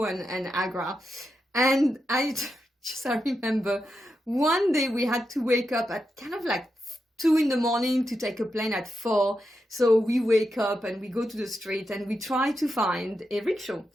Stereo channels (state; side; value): normal; both; correlation 0.86